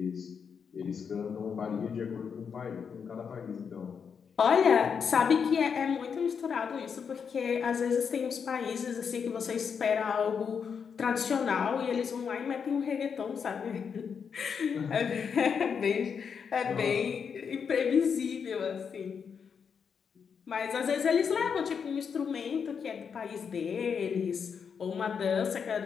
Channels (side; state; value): right; quieter; 6.6 dB